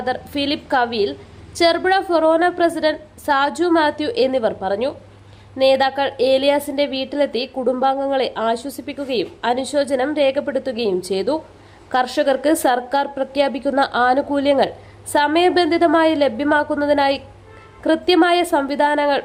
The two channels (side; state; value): both; identical; correlation 1.00